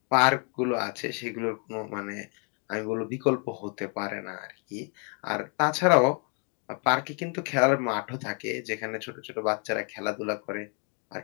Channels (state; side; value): quieter; right; 39.5 dB